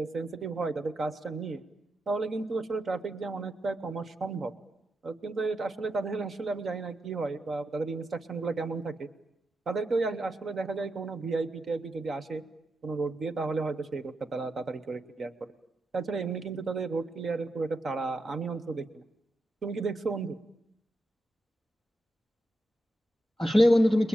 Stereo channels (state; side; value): normal; both; correlation 0.87